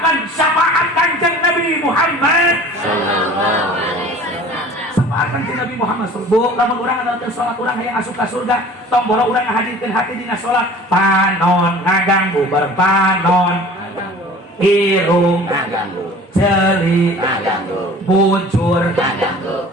Syafaat kanjeng Nabi Muhammad sallallahu alaihi wasallam. Syafaat kanjeng Nabi Muhammad sallallahu. Lamun urang adalah sholat urang yang asup ka surga, tong boro urang ngahadirkeun hati dina sholat. Panon ngaganggu bareng panon. Irung ngaganggu, celi ngaganggu, bujur ngaganggu.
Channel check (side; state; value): both; normal; correlation 0.45